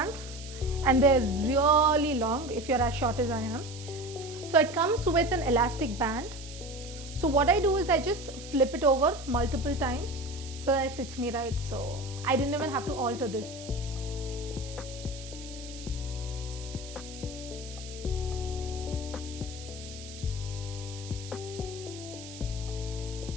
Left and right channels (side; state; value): right; noise; hiss, 14 dB below the sound